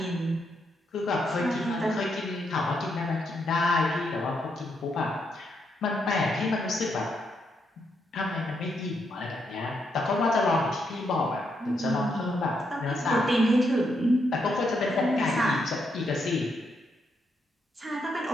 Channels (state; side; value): normal; both; correlation 0.79